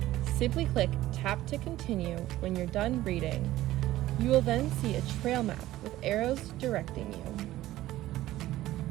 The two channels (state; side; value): quieter; left; 15.3 dB